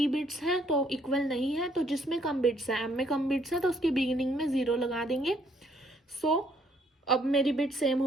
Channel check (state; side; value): normal; both; correlation 0.67